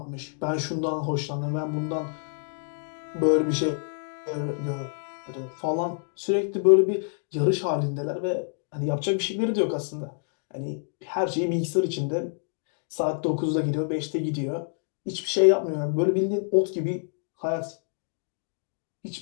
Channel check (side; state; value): right; silent; digital silence